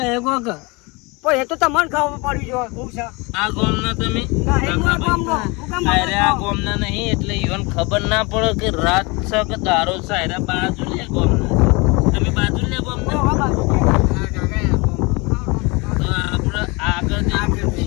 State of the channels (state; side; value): quieter; right; 27.0 dB